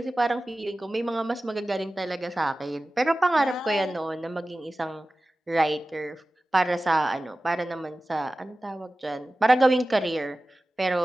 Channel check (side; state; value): both; normal; correlation 0.96